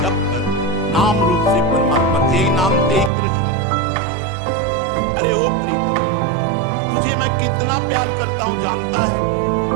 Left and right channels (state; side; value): drops out; left; at 3.1 s